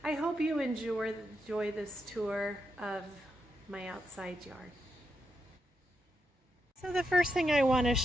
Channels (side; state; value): both; normal; correlation 0.84